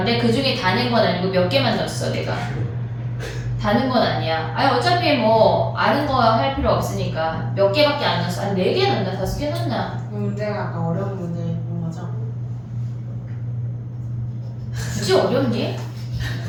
그 중에 다 낸 건 아니고 몇 개만 넣었어 내가. 다는 건 아니야. 아니 어차피 뭐 아는 거 할 필요 없으니까 몇 개밖에 안 넣었어. 한 4개 넣나 5개 넣나? 그 문제가 아까 어려운 문제 본 거죠? 굳이 어렵니?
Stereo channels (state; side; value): identical; both; correlation 1.00